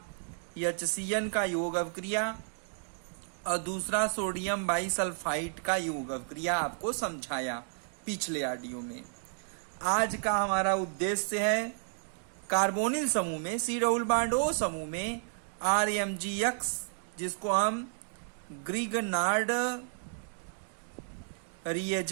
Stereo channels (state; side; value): silent; left; digital silence